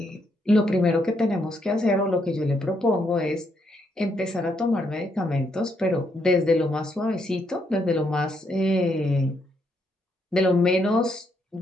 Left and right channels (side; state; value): both; normal; correlation 0.75